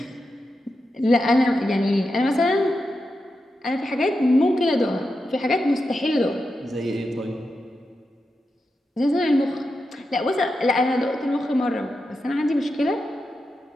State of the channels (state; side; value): normal; both; correlation 0.88